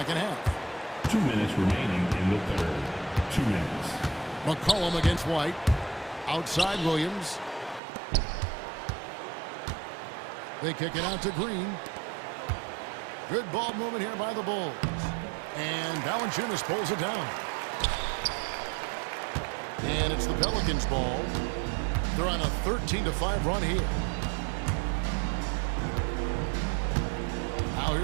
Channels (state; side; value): drops out; left; at 7.8 s